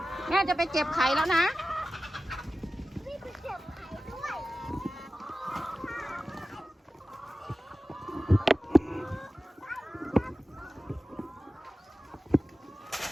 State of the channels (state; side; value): normal; both; correlation 0.95